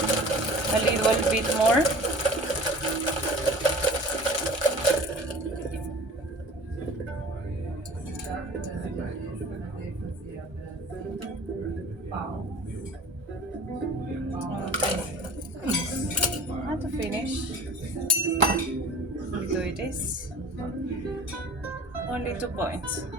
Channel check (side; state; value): left; late; 1.3 ms